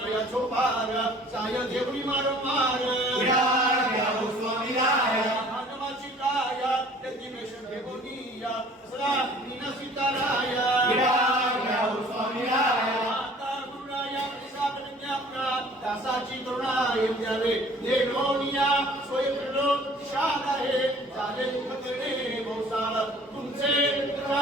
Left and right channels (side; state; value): both; normal; correlation 0.51